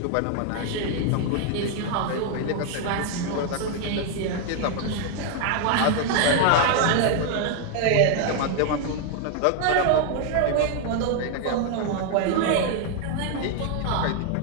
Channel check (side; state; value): both; different; correlation 0.00